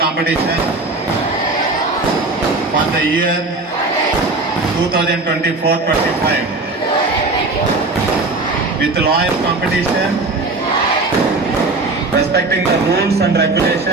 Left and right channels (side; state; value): left; quieter; 3.3 dB